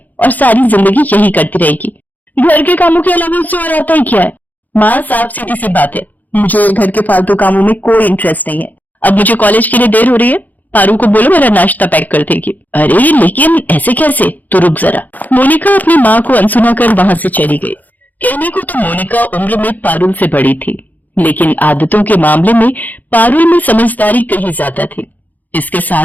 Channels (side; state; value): right; late; 0.082 ms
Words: और सारी जिंदगी यही करती रहेगी। घर के कामों के अलावा उससे और आता ही क्या है? माँ, साफ सीधी सी बात है, मुझे घर के फालतू कामों में कोई इंटरेस्ट नहीं है। अब मुझे कॉलेज के लिए देर हो रही है, पारू को बोलो मेरा नाश्ता पैक कर देगी। अरे लेकिन ऐसे कैसे? तो रुक जरा। मोनिका अपनी माँ को अनसुना कर वहां से चली गई। कहने को तो मोनिका उम्र में पारुल से बड़ी थी, लेकिन आदतों के मामले में पारुल में समझदारी कहीं ज्यादा थी। इसके